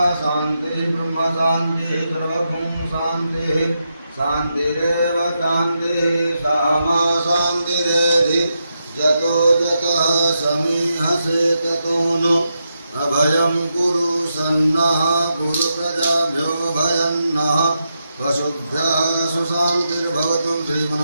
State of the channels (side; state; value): both; inverted; correlation -0.85